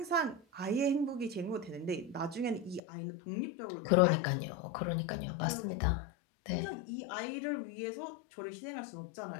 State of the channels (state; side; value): drops out; right; at 2.8 s